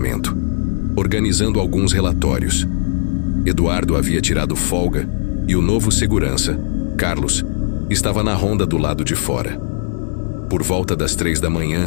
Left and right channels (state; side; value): silent; right; digital silence